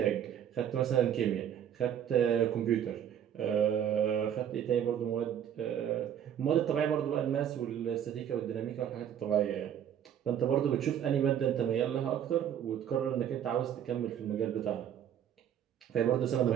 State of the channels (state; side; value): quieter; left; 9.5 dB